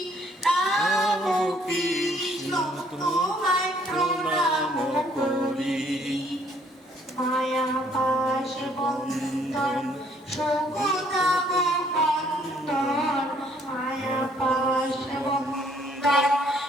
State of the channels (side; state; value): both; normal; correlation 0.64